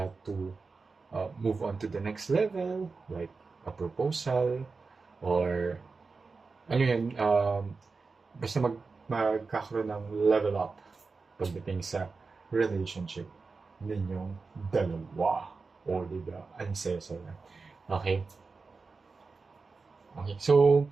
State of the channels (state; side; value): quieter; left; 4.3 dB